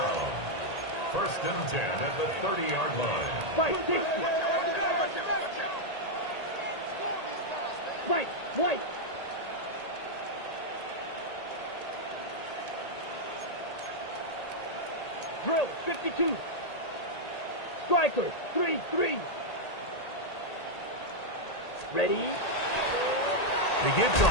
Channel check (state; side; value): late; right; 1.8 ms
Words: 1st and 10 at the 30-yard line. Fight, 60. Fight, White. Drill, 52. Striker, 3-3. Ready? He gives to